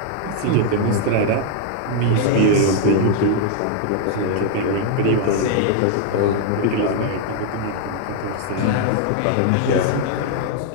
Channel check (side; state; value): both; different; correlation 0.00